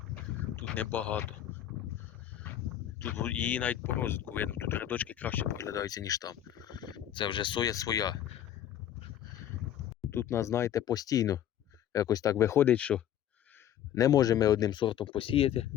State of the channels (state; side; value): quieter; right; 11.0 dB